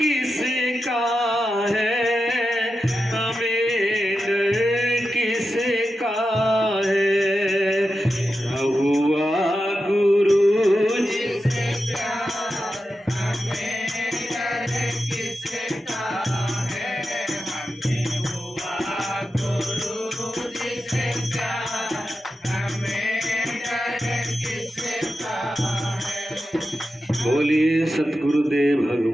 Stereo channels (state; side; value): normal; both; correlation 0.90